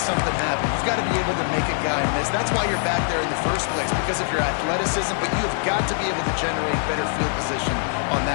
something happen. You've got to be able to make a guy miss. That's why you're back there in the first place, because of your athleticism, but you have got to be able to generate better field position on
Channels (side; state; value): right; silent; 63 dB below the other